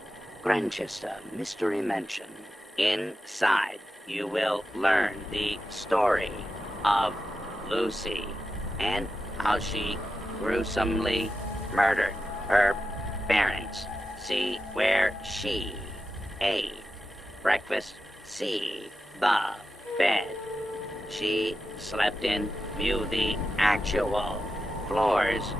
Grantchester Mystery Mansion. Inside, you will learn the story of Lucy and how she gruesomely murdered her parents. See where she ate breakfast. See the bed she slept in. View the actual floors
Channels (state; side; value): normal; both; correlation 0.90